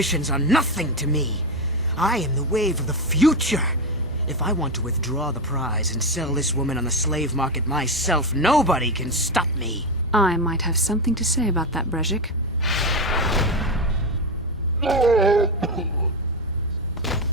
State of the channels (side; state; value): both; normal; correlation 0.12